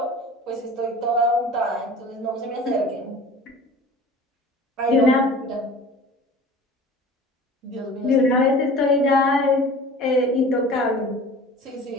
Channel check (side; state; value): both; normal; correlation 0.41